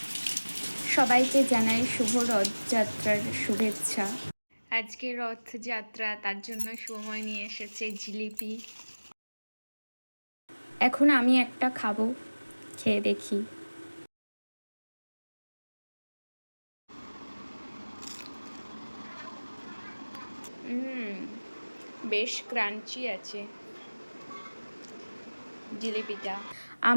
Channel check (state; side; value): inverted; both; correlation -1.00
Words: সবাইকে জানাই শুভ রথযাত্রার শুভেচ্ছা। আজকে রথযাত্রা, তার জন্য সময় নিয়ে এসেছে জিলিপি। এখন আমি একটা খাবো, খেয়ে দেখি। বেশ ক্রাঞ্চি আছে জিলিপিটা।